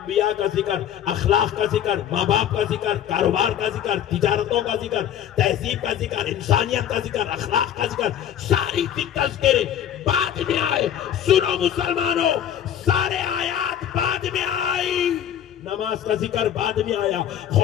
का जिक्र, अखलाक का जिक्र, माँ बाप का जिक्र, कारोबार का जिक्र, तिजारतों का जिक्र, तहजीब का जिक्र, इंसानियत का जिक्र, अखलाक का जिक्र, सारी तज़किरे बाद में आए। सुनो मुसलमानों, सारे आयात बाद में आई, नमाज का जिक्र बाद में आया।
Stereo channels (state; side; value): quieter; right; 10.1 dB